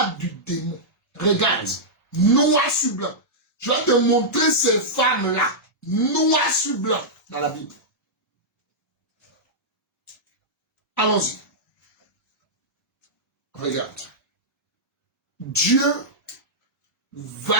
du démon. Regarde, noir sur blanc. Je vais te montrer ces femmes-là, noir sur blanc, dans la Bible. Allons-y. Regarde. Dieu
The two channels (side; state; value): both; normal; correlation -0.10